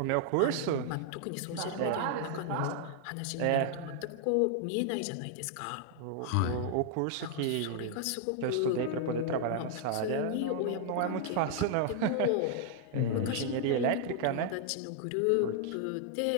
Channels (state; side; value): different; both; correlation -0.01